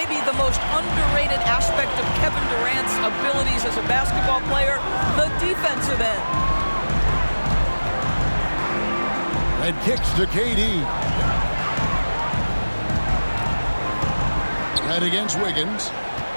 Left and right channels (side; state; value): both; inverted; correlation -1.00